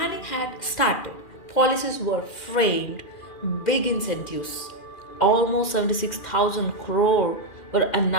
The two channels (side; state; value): right; late; 2.4 ms